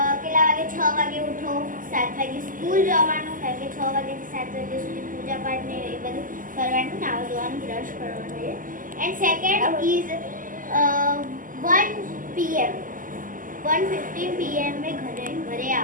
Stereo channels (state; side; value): late; left; 0.39 ms